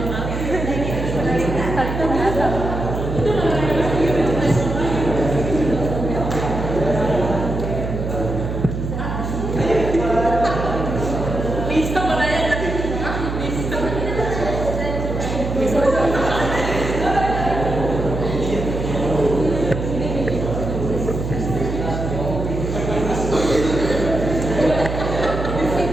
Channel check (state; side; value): noise; right; hum, 4 dB below the sound